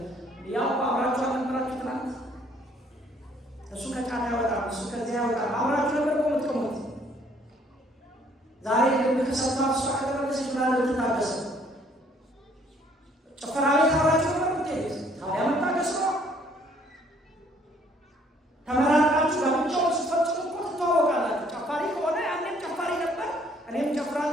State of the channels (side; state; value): both; normal; correlation 0.62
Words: ያው አብራችሁ አልነበራችሁ ትናንት እሱ ከጫና ያወጣል እሱ ከዚያ ያወጣል አብራችሁ ነበር ቆምት ዛሬ ከሰፋ እሱ አከረበሰች ምናለ ልትታገሰ ጭፈራ ቤት አብራችሁ ነበር ምትሄድ ታዲያ መታገስ ነው። ተመራቃችሁ ለብቻው ስፈጽሙ እኮ ትተዋወቃላችሁ። ጨፋሪ ከሆነ ያንን ጨፋሪ ነበር እኔም